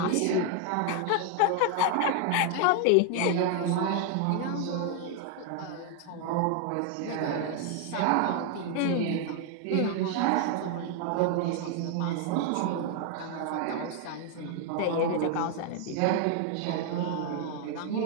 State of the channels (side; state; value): both; different; correlation 0.00